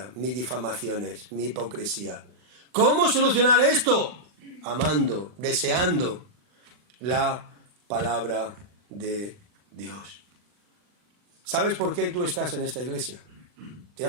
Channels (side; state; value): left; late; 39 ms